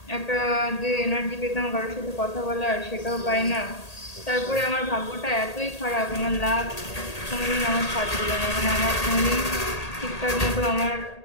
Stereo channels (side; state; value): right; late; 1.8 ms